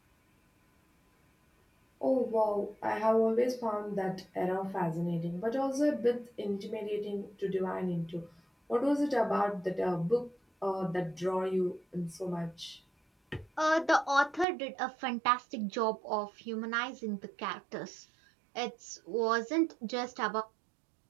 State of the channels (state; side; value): drops out; left; at 14.5 s